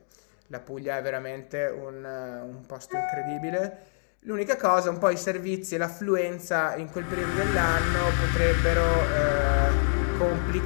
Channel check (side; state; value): right; silent; digital silence